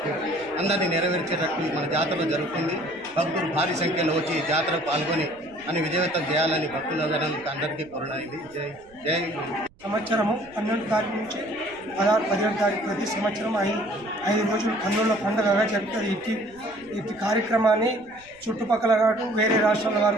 అందరినీ నెరవేర్చేటట్టు మన జాతరలో జరుగుతుంది. భక్తులు భారీ సంఖ్యలో వచ్చి జాతరకు పాల్గొని అని విజయవంతం చేయాలని భక్తులందరూ అందరికీ కోరడమైంది. జై సంవత్సరము 12 తారీఖు నుంచి 16-17 తారీఖు ప్రతి సంవత్సరం 5 రోజులు కన్నుల పండుగగా జరుగుతుంది. ఇట్టి కార్యక్రమాన్ని చుట్టుపక్కల కాదు వేరే రాష్ట్రాల వారు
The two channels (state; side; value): noise; right; rumble, 28 dB below the sound